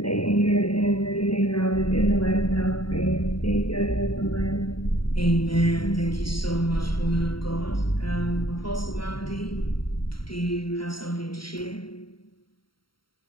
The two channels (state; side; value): late; right; 0.73 ms